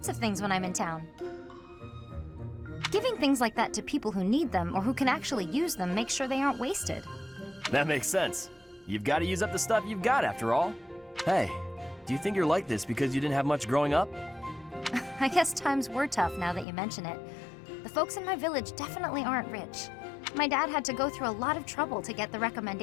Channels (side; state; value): right; drops out; at 16.7 s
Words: of things when I'm in town. Giving things like that to people who need them or who can actually use them makes sure they aren't wasted. That makes sense. You've got to use up the stuff you've got after all. Hey, do you think you're like this because you didn't have much growing up? I guess times were tough now that you mention it. The folks in my village definitely aren't rich. My dad had to go through a lot of trouble to get the